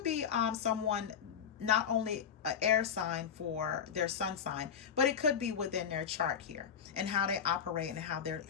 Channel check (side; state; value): right; quieter; 7.6 dB